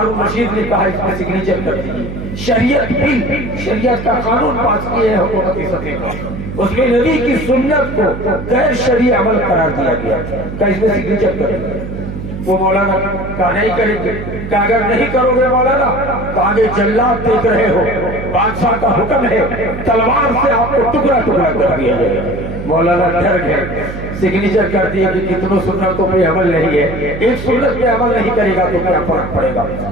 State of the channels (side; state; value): right; noise; hum, 8 dB below the sound